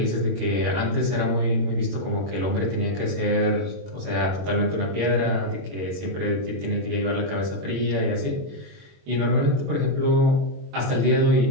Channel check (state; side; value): late; left; 21 ms